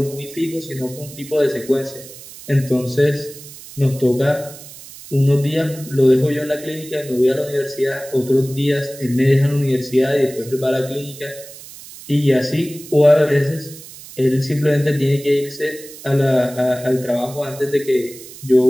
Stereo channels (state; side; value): noise; right; hiss, 16 dB below the sound